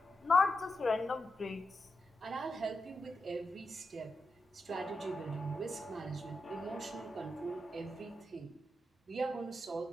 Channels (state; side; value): normal; both; correlation 0.87